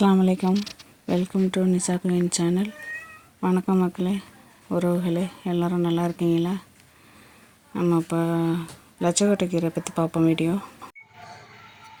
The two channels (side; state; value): both; identical; correlation 1.00